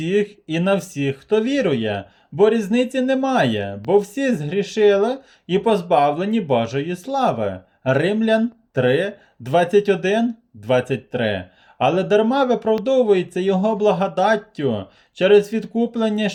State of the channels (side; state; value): both; identical; correlation 1.00